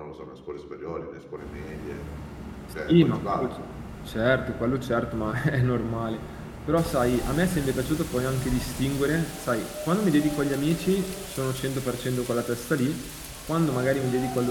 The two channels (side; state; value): both; identical; correlation 1.00